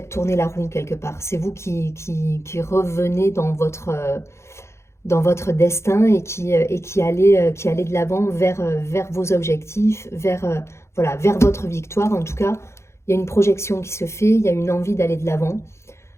tourner la roue quelque part. C'est vous qui revenez dans votre destin et qui allez de l'avant vers vos objectifs, vers votre victoire. En tout cas, il y a une projection qui se fait, il y a une envie d'aller de l'avant.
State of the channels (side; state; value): right; late; 0.13 ms